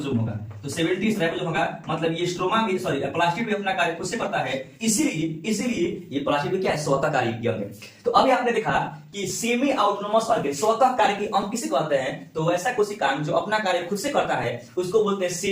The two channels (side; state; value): both; identical; correlation 1.00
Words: होगा। तो 70S राइबोसोम होगा, मतलब ये स्ट्रोमा भी प्लास्टिड भी अपना कार्य खुद से करता है, इसीलिए ये प्लास्टिड भी क्या है? स्वतः कार्यकी अंग है। तो अभी आपने देखा कि सेमी ऑटोनोमस ऑर्गन स्वतः कार्यकी अंग किसे कहते हैं? तो वैसा कोशिका जो अपना कार्य खुद से करता है उसको बोलते हैं